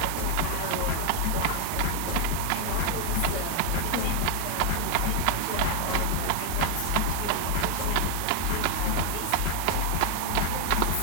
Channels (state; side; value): different; both; correlation 0.00